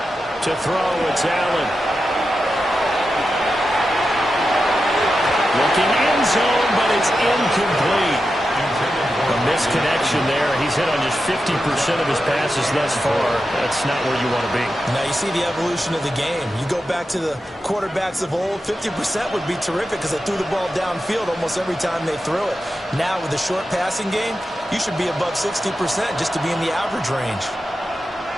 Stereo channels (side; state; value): both; normal; correlation 0.90